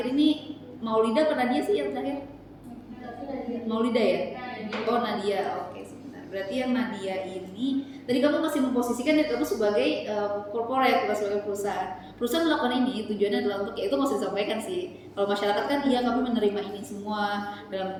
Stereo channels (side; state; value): both; identical; correlation 1.00